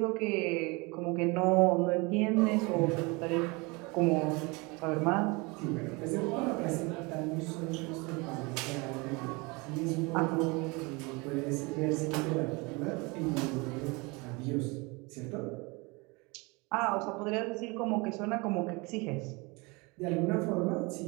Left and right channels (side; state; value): left; quieter; 26.9 dB